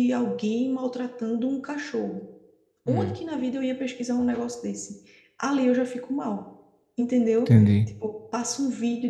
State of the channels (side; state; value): both; identical; correlation 1.00